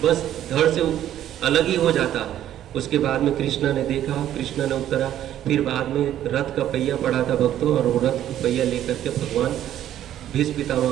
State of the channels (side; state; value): left; quieter; 11.7 dB